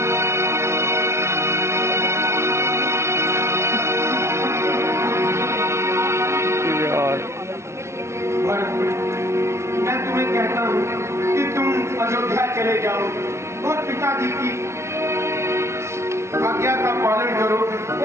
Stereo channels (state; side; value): late; left; 0.13 ms